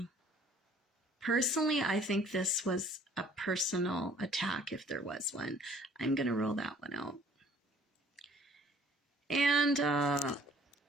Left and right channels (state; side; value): normal; both; correlation 0.55